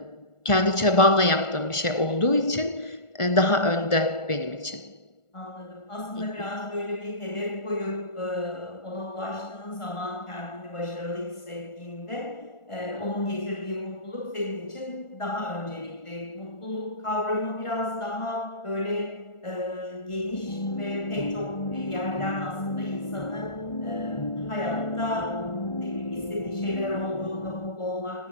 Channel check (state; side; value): late; right; 1.4 ms